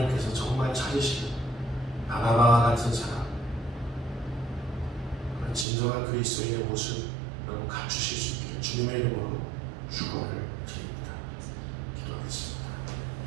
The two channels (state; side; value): drops out; left; at 5.7 s